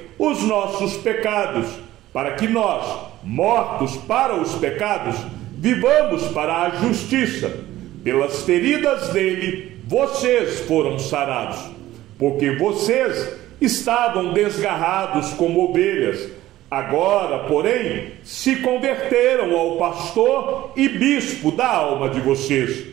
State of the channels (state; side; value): quieter; left; 15.2 dB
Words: os nossos pecados, para que nós, mortos para os pecados, vivamos para a justiça. Pelas feridas dele, vocês foram sarados, porque vocês estavam desgarrados como ovelhas. Agora, porém, se converteram ao pastor e bispo da alma de vocês.